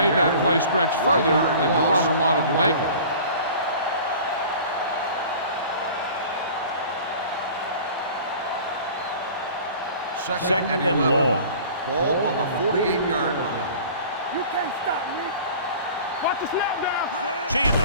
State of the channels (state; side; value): inverted; both; correlation -0.43